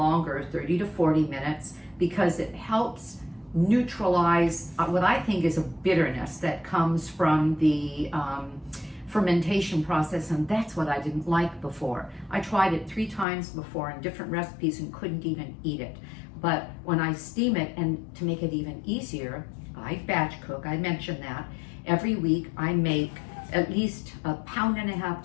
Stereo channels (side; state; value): right; drops out; at 13.2 s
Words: 30 to 40 minutes, because it helps neutralize what I think is a bitterness that comes from the fermentation process, and that's what I didn't like before. I tried it 3 times before in different recipes and couldn't even eat it. But when I steam it, and to make it even easier, I batch cook, I mentioned that. Every week I make at least 1.5